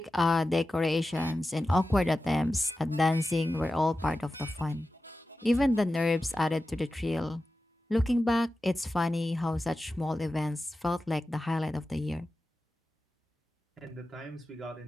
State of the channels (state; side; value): normal; both; correlation 0.94